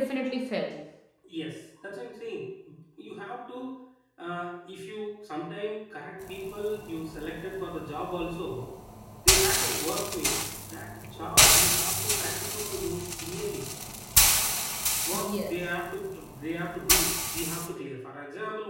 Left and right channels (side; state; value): both; identical; correlation 1.00